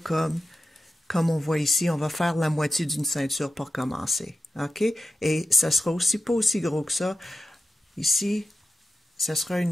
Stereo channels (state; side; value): normal; both; correlation 0.91